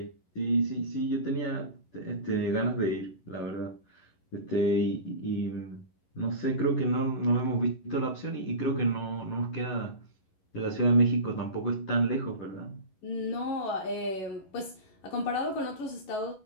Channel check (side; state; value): right; late; 11 ms